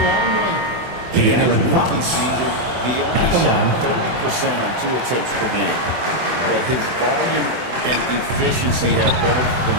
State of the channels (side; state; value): left; late; 24 ms